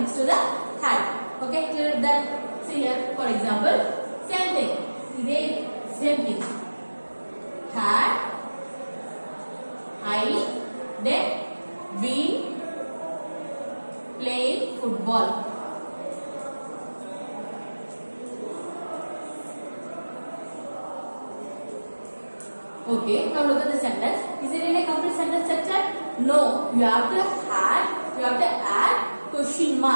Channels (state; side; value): inverted; both; correlation -1.00